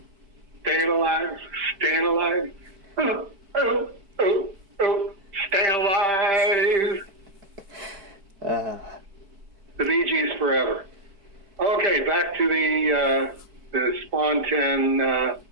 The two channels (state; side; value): late; left; 5.0 ms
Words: Staying alive. Oh, staying alive. The Bee Gees forever. to the Spawn 10